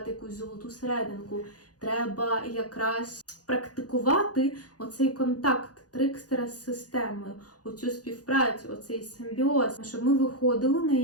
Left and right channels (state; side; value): late; right; 0.68 ms